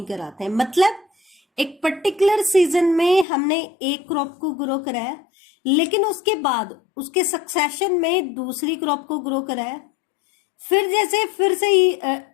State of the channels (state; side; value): drops out; right; at 3.2 s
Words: कराते हैं। मतलब एक पर्टिकुलर सीजन में हमने एक क्रॉप को ग्रो कराया, लेकिन उसके बाद उसके सक्सेशन में दूसरी क्रॉप को ग्रो कराया, फिर से ही